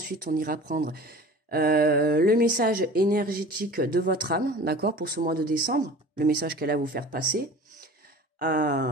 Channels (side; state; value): both; normal; correlation 0.41